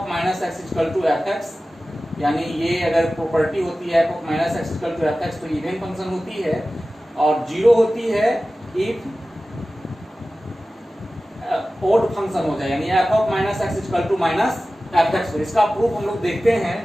minus x equal to fx, यानी ये अगर प्रॉपर्टी होती है f of minus x equal to fx तो इवन फंक्शन होती है, और 0 होती है इफ ओड फंक्शन हो जाए, यानी F of minus X equal to minus F X. इसका प्रूफ हम लोग देखते हैं।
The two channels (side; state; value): both; normal; correlation 0.96